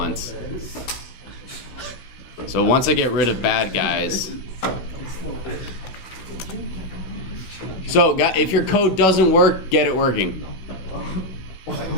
So once I get rid of bad guys. So if your code doesn't work, get it working.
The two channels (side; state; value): right; late; 16 ms